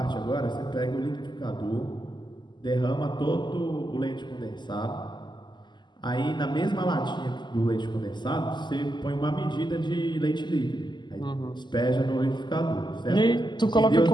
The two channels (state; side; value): late; right; 0.21 ms